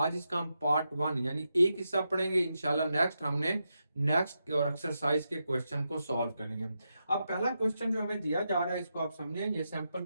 इसका हम पार्ट 1 यानी एक हिस्सा पढ़ेंगे, इंशाल्लाह नेक्स्ट हमने नेक्स्ट और एक्सरसाइज के क्वेश्चन को सॉल्व करेंगे। अब पहला क्वेश्चन जो हमें दिया जा रहा है इसको आप समझें, ये सैंपल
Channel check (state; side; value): inverted; both; correlation -0.86